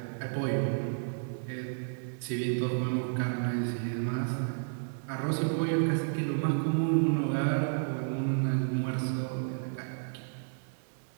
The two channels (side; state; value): left; silent; digital silence